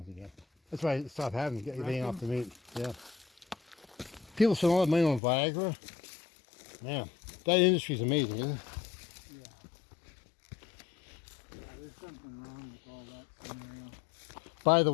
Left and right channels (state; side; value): drops out; right; at 5.2 s